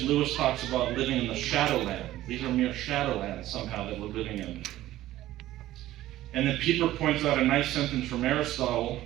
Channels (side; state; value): left; quieter; 14.8 dB